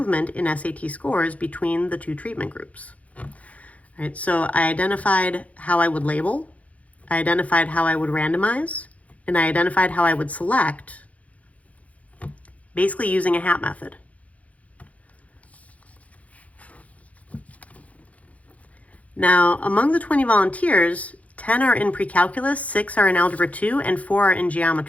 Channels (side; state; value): right; late; 0.067 ms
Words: in SAT scores between the two treatment groups. All right, so I identified how I would label, I identified how I would randomize, and I identified how I would select, basically using a hat method. Now, among the 20 volunteers, 10 are in pre-calculus, 6 are in algebra 2, and 4 are in